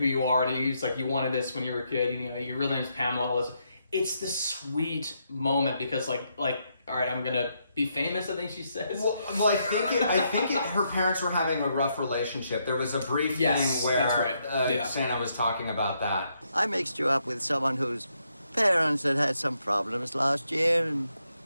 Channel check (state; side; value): inverted; both; correlation -0.78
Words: you are, and he's like, you wanted this when you were a kid. You know, your real name's Pamela. It's the sweet moment because like all right, I'm gonna be famous, I think she says. Well, I think her parents were having a rough relationship. There was a brief thing where Santa was talking about that. I mixed you up with someone whose parents had some problems last year, and,